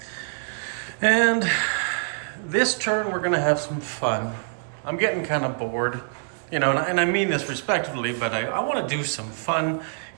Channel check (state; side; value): silent; left; 59 dB below the other